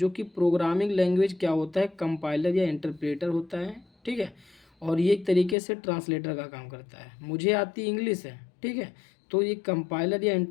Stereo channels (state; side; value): drops out; right; at 5.6 s